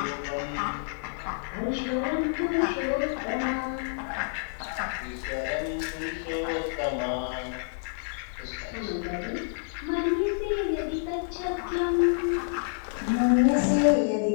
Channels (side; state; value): right; silent; 59 dB below the other